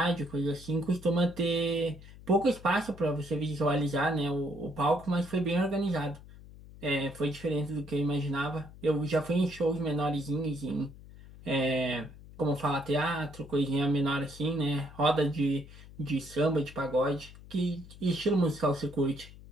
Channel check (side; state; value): left; noise; hum, 18 dB below the sound